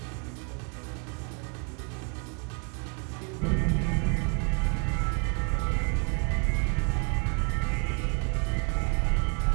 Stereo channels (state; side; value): quieter; left; 37.7 dB